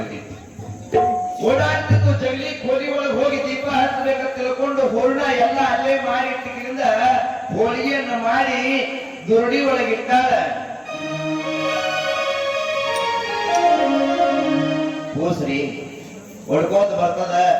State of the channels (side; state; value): both; identical; correlation 1.00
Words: ಓಡಾಡ್ತಿತ್ತು. ಜಗಲಿ ಕೋಲಿ ಒಳಗೆ ಹೋಗಿ ದೀಪ ಹಚ್ಚಬೇಕಂತ ತಿಳ್ಕೊಂಡು ಹೂರ್ಣ ಎಲ್ಲ ಅಲ್ಲೇ ಮಾಡಿ ಇಟ್ಟಿದ್ರಿಂದ ಹೋಳಿಗೆಯನ್ನ ಮಾಡಿ ದುರಡಿ ಒಳಗಿಟ್ಟಾಳ. ಕೂಸ್ರಿ ಹೊಡ್ಕೋತ ಬರ್ತದ,